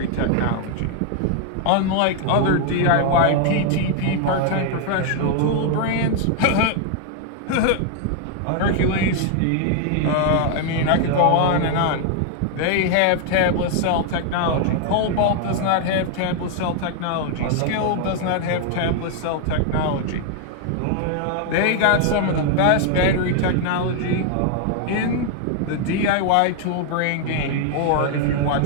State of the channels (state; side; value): different; both; correlation 0.00